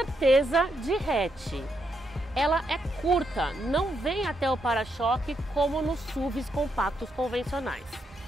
de hatch. Ela é curta, não vem até o para-choque como nos SUVs compactos convencionais.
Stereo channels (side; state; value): both; normal; correlation 0.80